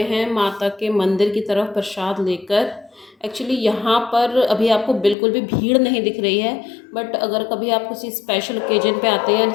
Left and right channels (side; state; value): right; drops out; at 5.2 s